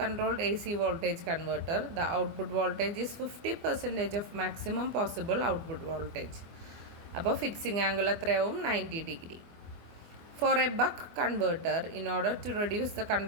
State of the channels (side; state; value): left; late; 24 ms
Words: AC voltage converter, the output voltage is 50% of maximum possible output voltage. അപ്പോൾ fixing angle എത്രയാവും 90 degree. For a buck converter, in order to reduce the